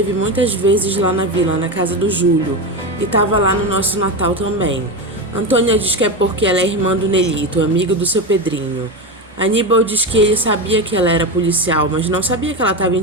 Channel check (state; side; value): normal; both; correlation 0.17